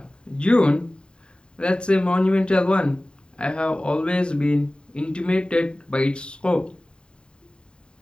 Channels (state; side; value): late; right; 0.050 ms